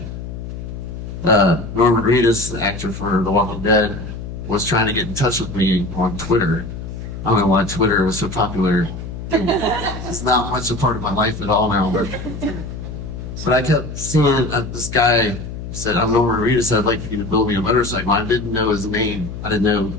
Norman Reedus, the actor for The Walking Dead, was trying to get in touch with me on Twitter. I don't know why Twitter was so popular. It's not much a part of my life at all now. But I kept seeing this guy said, I'm Norman Reedus, I'd like for you to build me a motorcycle. I didn't know his name. I knew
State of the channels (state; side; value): noise; left; hum, 9 dB below the sound